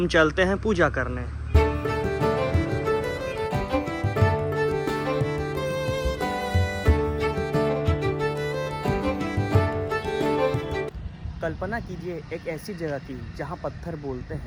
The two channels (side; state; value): both; identical; correlation 1.00